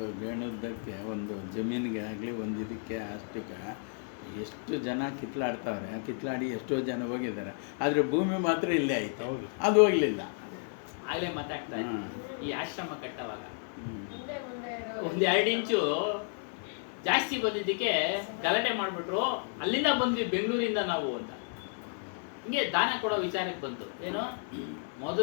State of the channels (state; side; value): silent; right; 56 dB below the other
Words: ಗೇಣುದ್ದಕ್ಕೆ ಒಂದು ಜಮೀನಿಗೆ ಆಗಲಿ ಒಂದು ಇದಕ್ಕೆ ಅಷ್ಟಕ್ಕೆ ಎಷ್ಟು ಜನ ಕಿತ್ಲಾಡ್ತಾವ್ರೆ, ಕಿತ್ಲಾಡಿ ಎಷ್ಟೋ ಜನ ಹೋಗಿದ್ದಾರೆ, ಆದರೆ ಭೂಮಿ ಮಾತ್ರ ಇಲ್ಲೇ ಆಯ್ತು. ಹೌದು. ಅದು ಹೋಗ್ಲಿಲ್ಲ. ಆಗ್ಲೇ ಮಾತಾಡ್ತಾ ಇದ್ವಿ. ಈ ಆಶ್ರಮ ಕಟ್ಟವಾಗ ಮುಂದೆ ಇರೋದು. ಒಂದ್ 2 ಇಂಚು ಜಾಸ್ತಿ ಬಂದಿದ್ದಕ್ಕೆ ಗಲಾಟೆ ಮಾಡ್ಬಿಟ್ರು. ಅಲ್ಲಿಂದ ಬಂದ್ವಿ ಬೆಂಗಳೂರಿಂದ ನಾವು ಅಂತ. ಹಿಂಗೆ ದಾನ ಕೊಡೋ ವಿಚಾರಕ್ಕೆ ಬಂತು. ಏನು